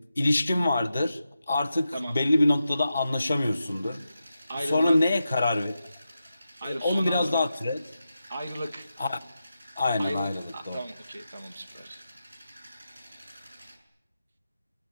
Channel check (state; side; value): inverted; both; correlation -0.90